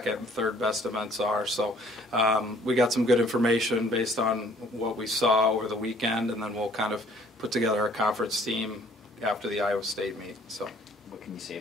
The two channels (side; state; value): both; normal; correlation 0.58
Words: and third best events are. So we got some good information based on what we saw over the weekend, and then we'll kind of put together a conference team after the Iowa State meet. So, what can you say